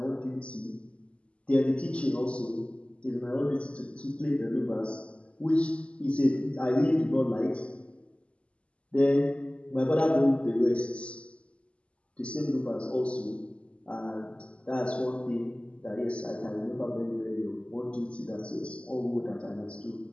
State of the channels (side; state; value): right; late; 0.058 ms